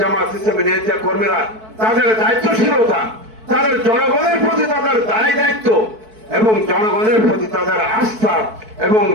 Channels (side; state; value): left; late; 4.6 ms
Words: ইসলামের নেতা কর্মীরা তাদের দায়িত্বশীলতা, তাদের জনগণের প্রতি তাদের দায় দায়িত্ব এবং জনগণের প্রতি তাদের আস্থা এবং